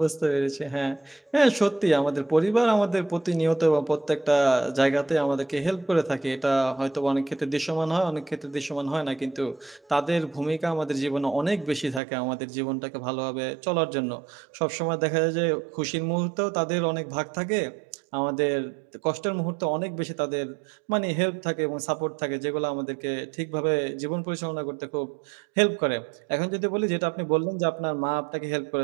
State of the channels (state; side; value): drops out; left; at 12.0 s